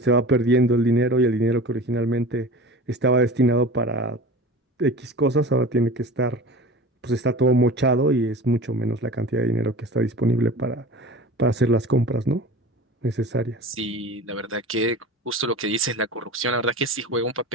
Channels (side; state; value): both; normal; correlation 0.36